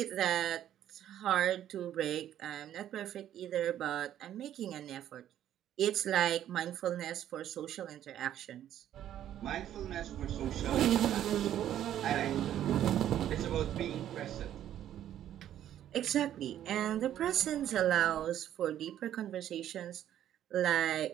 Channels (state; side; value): quieter; left; 11.3 dB